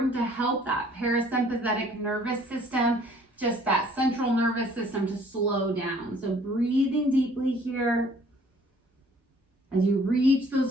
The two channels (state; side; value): normal; both; correlation 0.57